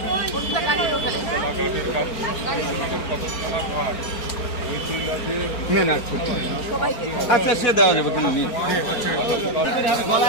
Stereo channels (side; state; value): right; late; 4.4 ms